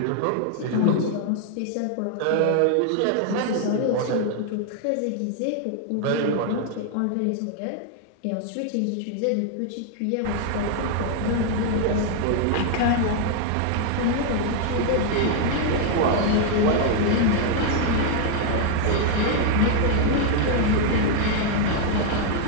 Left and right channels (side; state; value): both; different; correlation 0.00